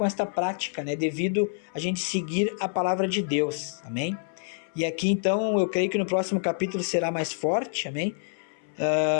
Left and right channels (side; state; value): right; silent; 60 dB below the other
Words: esta prática, né? Devido a gente seguir a palavra de Deus, amém? E aqui então eu creio que no próximo capítulo será mais forte, amém?